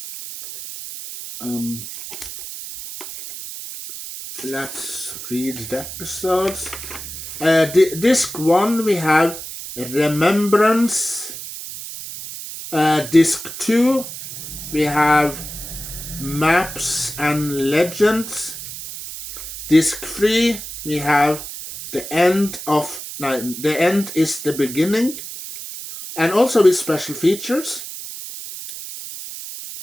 let's read the episodes. Disc 1 we have Remembrance. Disc 2 we have Maps and Legends. Disc 3 we have The End is the Beginning. And also with special features.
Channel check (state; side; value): noise; right; hiss, 10 dB below the sound